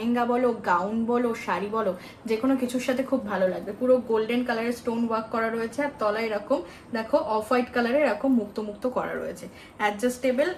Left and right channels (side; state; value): both; identical; correlation 1.00